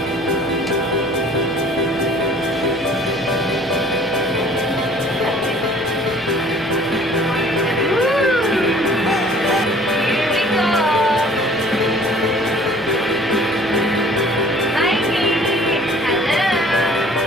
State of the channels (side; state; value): both; normal; correlation 0.52